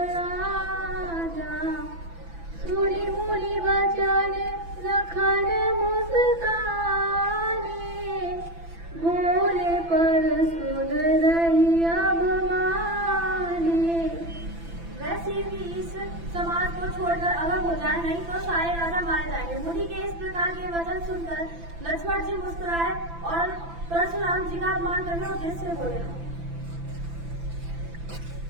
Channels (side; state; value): left; late; 6.0 ms